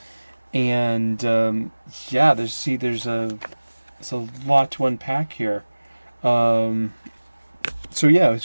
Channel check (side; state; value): both; inverted; correlation -1.00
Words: there's a lot to unpack here. So